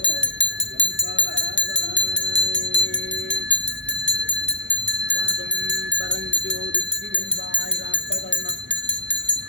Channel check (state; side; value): late; right; 0.53 ms